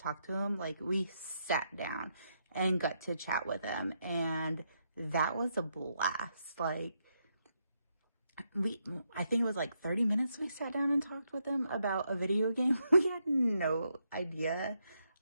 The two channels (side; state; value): both; inverted; correlation -0.79